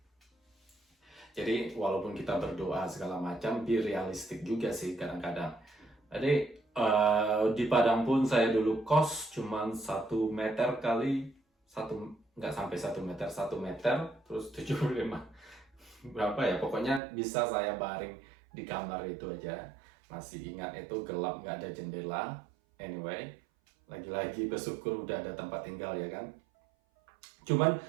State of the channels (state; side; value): drops out; left; at 17.0 s